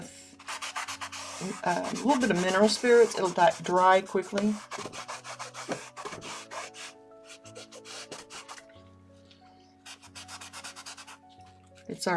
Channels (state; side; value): identical; both; correlation 1.00